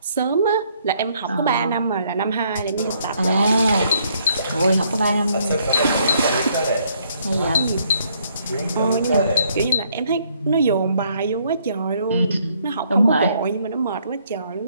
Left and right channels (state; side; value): inverted; both; correlation -0.69